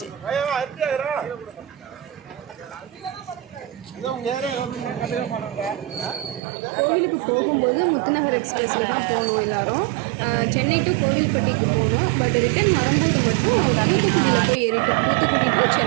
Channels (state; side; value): drops out; left; at 6.4 s